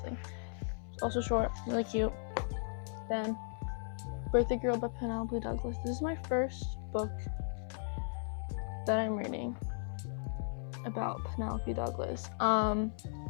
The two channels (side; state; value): right; silent; 53 dB below the other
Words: It's also short, really cute. Then Birthday Girl by Penelope Douglas. This is my first book that I'm reading about Penelope Douglas.